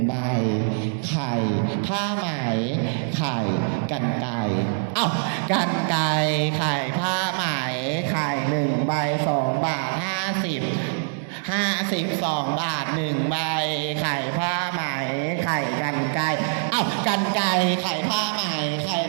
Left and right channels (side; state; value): left; silent; 63 dB below the other